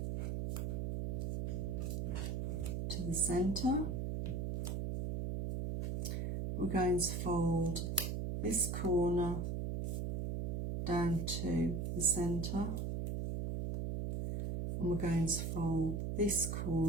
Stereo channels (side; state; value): right; noise; hum, 1 dB below the sound